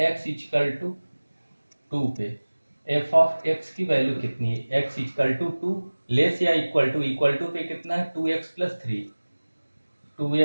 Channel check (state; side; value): inverted; both; correlation -1.00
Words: x इक्वल टू 2 पे f ऑफ x की वैल्यू कितनी है, x इक्वल टू 2 लेस या इक्वल टू पे कितना है 2x + 3,